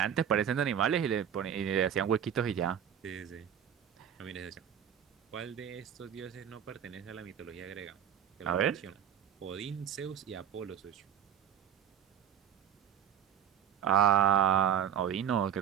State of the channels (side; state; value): left; quieter; 9.1 dB